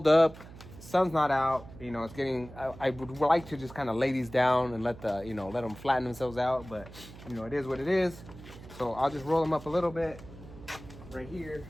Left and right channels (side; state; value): right; noise; hum, 17 dB below the sound